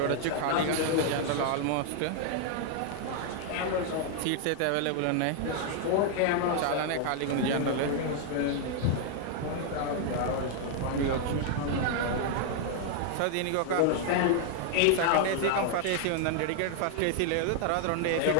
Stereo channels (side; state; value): both; different; correlation 0.00